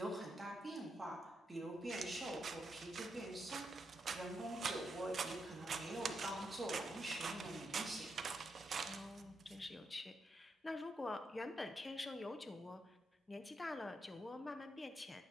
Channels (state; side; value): normal; both; correlation 0.82